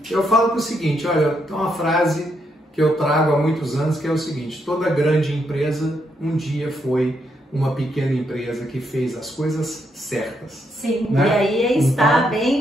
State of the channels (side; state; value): both; normal; correlation 0.78